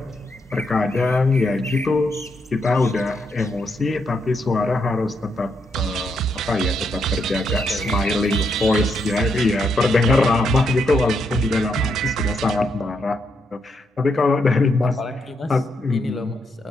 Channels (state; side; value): normal; both; correlation 0.79